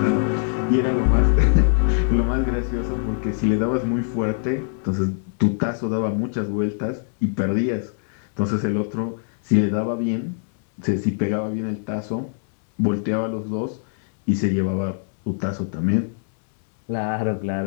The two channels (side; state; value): right; silent; digital silence